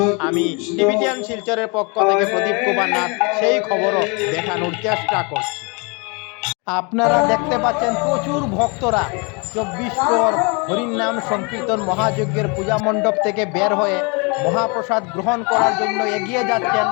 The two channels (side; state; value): right; quieter; 31.7 dB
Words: আমি টিভি10 শিলচরের পক্ষ থেকে প্রদীপ কুমার নাথ সেই খবরও দেখানোর চেষ্টা করছি। আপনারা দেখতে পাচ্ছেন প্রচুর ভক্তরা 24 প্রর হরির নাম সংকীর্তন মহাযজ্ঞের পূজা মণ্ডপ থেকে বের হয়ে মহাপ্রসাদ গ্রহণ করার জন্য এগিয়ে যাচ্ছেন।